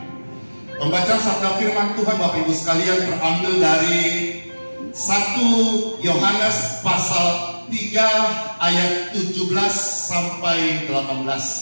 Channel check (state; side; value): inverted; both; correlation -1.00